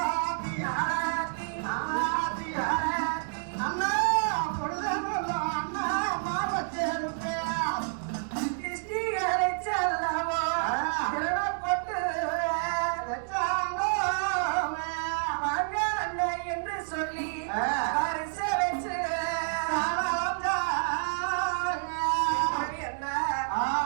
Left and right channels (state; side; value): silent; left; digital silence